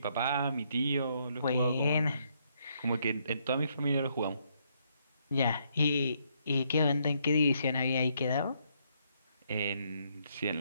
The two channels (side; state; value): both; inverted; correlation -0.73